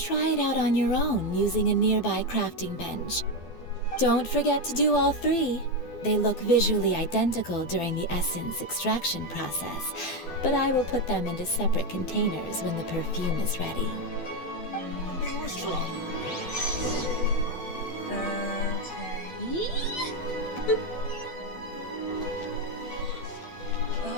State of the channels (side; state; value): right; late; 12 ms